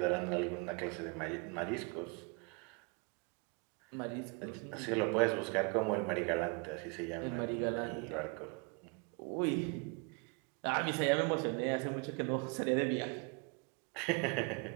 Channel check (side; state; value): left; quieter; 32.8 dB